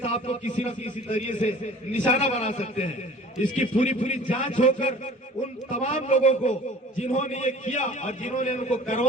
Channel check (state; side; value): normal; both; correlation 0.46